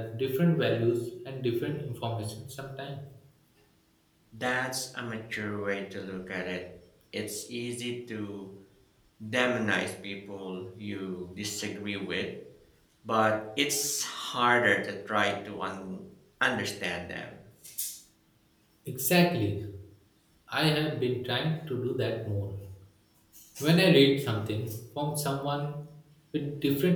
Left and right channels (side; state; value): both; identical; correlation 1.00